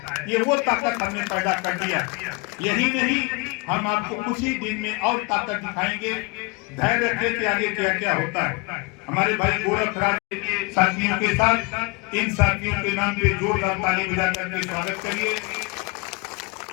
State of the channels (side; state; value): right; quieter; 28.1 dB